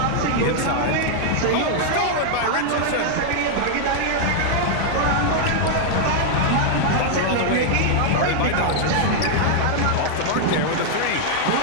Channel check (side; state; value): both; different; correlation -0.01